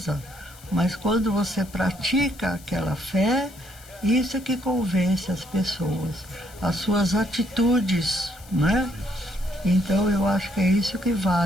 mas quando você pratica aquela fé, isso é que convence as pessoas, as suas atitudes, né? Então eu acho que é isso que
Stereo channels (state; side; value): noise; left; hiss, 22 dB below the sound